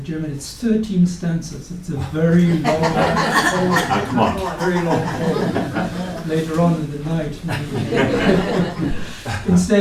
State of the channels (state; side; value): identical; both; correlation 1.00